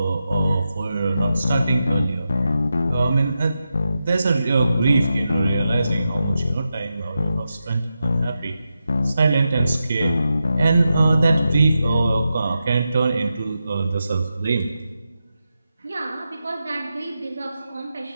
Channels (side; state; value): both; inverted; correlation -0.89